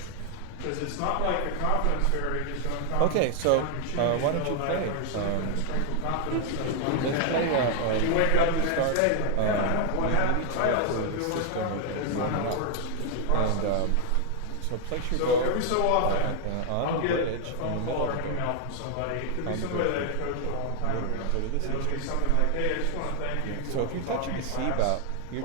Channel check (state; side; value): different; both; correlation 0.00